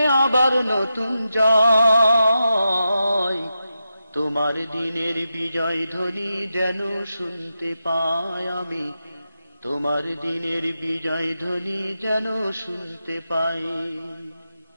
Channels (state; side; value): inverted; both; correlation -0.89